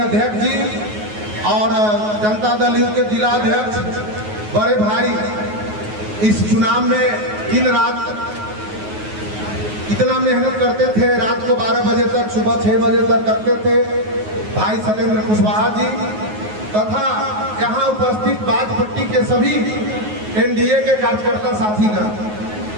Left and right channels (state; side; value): late; left; 9.4 ms